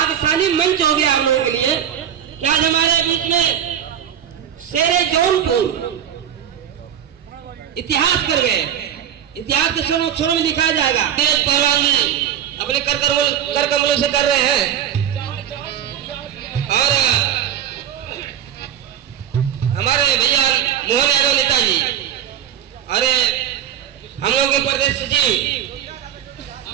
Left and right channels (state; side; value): quieter; left; 9.7 dB